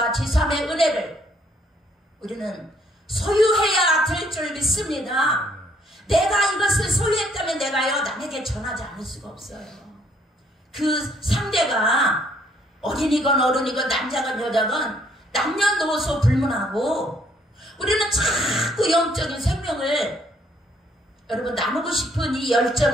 지삼의 은혜를 우리는 소유해야 될 줄 믿습니다. 내가 이것을 소유했다면 내가요 남에게 전하지 않을 수가 없어요. 그 상대가 어린이건 어른이건 남자건 여자건 남녀노소 불문하고 우리는 자꾸 영적인 생명을 여러분 나누고 싶은 이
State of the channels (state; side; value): normal; both; correlation 0.66